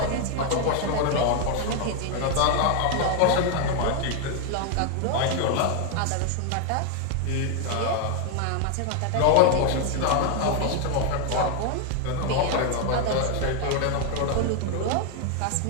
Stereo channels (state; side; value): different; both; correlation 0.01